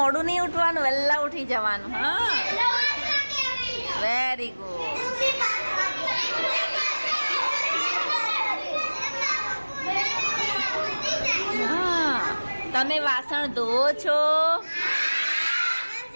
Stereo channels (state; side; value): inverted; both; correlation -1.00